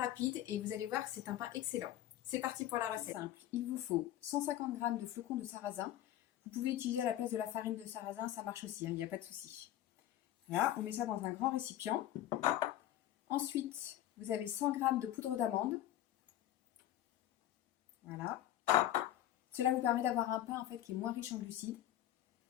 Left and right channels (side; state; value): right; quieter; 12.8 dB